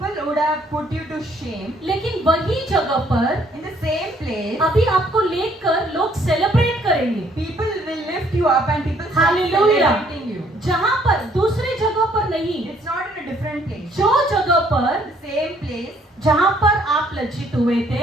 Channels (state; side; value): normal; both; correlation 0.64